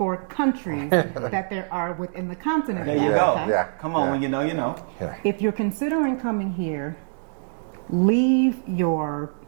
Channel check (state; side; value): silent; left; digital silence